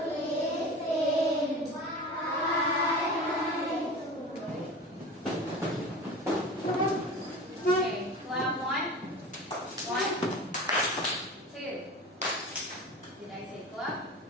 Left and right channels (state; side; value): normal; both; correlation 0.34